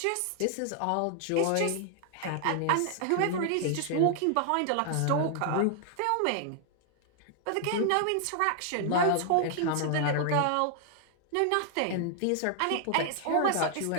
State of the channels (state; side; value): different; both; correlation 0.00